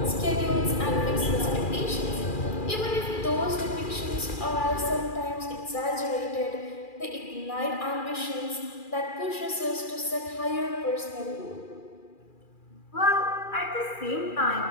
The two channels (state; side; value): late; right; 2.4 ms